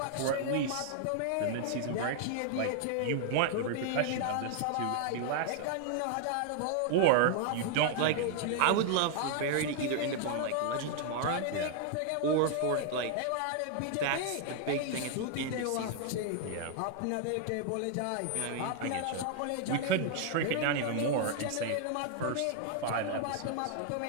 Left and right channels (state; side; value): different; both; correlation 0.00